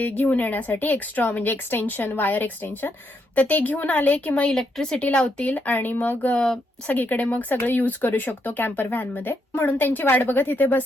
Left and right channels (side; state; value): both; normal; correlation 0.78